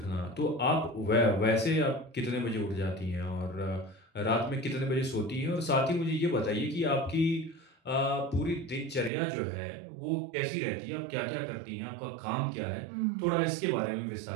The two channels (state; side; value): drops out; left; at 9.1 s